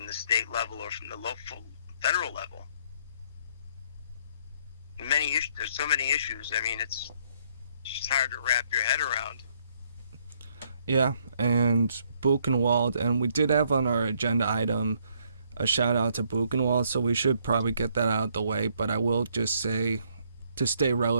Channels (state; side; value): inverted; both; correlation -0.68